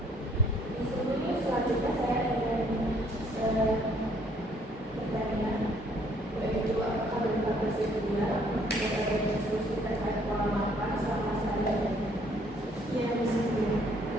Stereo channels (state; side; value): normal; both; correlation 0.64